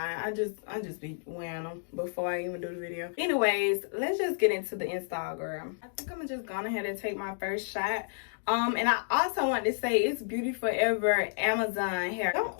I just be wearing them before I even do the video. Anyways, let's just get into the install, girl. I think I'm just going ahead and take my first shot. And I also want to say it's Beauty Forever Amazon hair. Don't,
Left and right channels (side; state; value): right; silent; digital silence